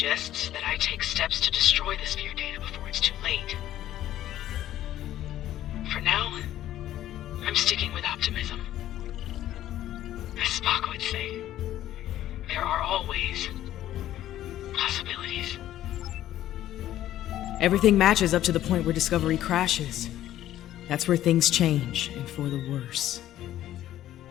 that I take steps to destroy the sphere data before it's too late. For now, I'm sticking with optimism. As Spock would say, there are always possibilities. Everything matches up to the point where Discovery crashes. That's where things change, and for the worse.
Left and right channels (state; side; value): quieter; right; 13.0 dB